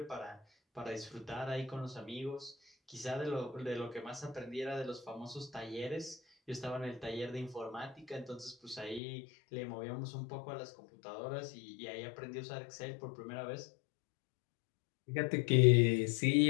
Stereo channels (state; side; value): drops out; right; at 9.0 s